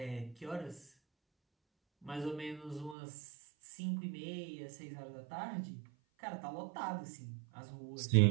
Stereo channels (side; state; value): left; drops out; at 3.0 s